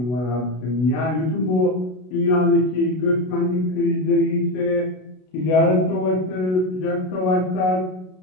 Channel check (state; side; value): late; right; 33 ms